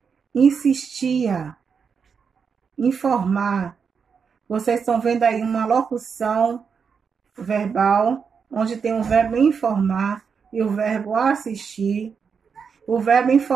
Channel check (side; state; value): left; quieter; 6.1 dB